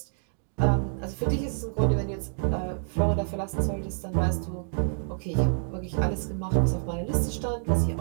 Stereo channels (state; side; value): silent; left; digital silence